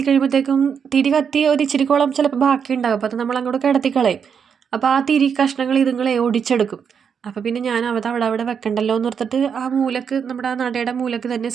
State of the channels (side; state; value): left; quieter; 7.0 dB